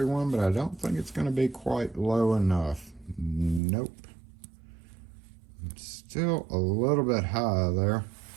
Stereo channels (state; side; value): drops out; left; at 3.6 s